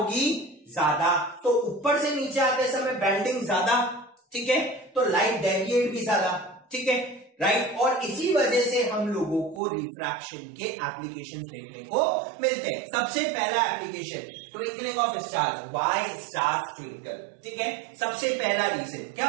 ज्यादा। तो ऊपर से नीचे आते समय बैंडिंग ज्यादा, ठीक है, तो लाइट डेविएट भी ज्यादा, ठीक है, राइट। और इसी वजह से हम लोगों को रिफ्रैक्शन के एप्लीकेशंस देखने को मिलते हैं। सबसे पहला application twinkling of stars, why stars twinkle, ठीक है। सबसे पहला रीजन क्या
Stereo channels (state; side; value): drops out; left; at 9.6 s